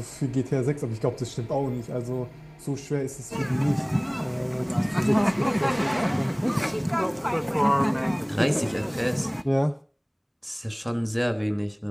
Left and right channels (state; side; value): identical; both; correlation 1.00